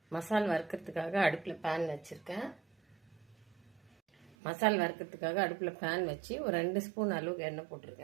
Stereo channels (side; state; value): left; drops out; at 4.4 s